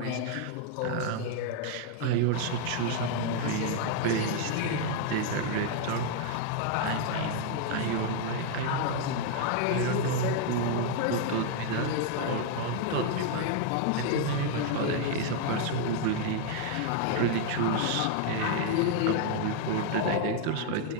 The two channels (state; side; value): different; both; correlation 0.00